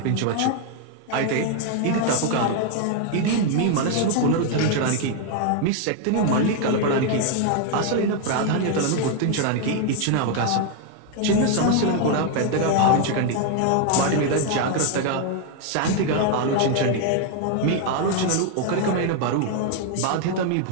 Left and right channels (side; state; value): both; different; correlation 0.00